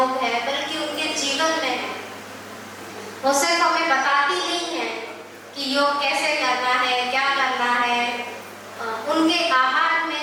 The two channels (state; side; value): identical; both; correlation 1.00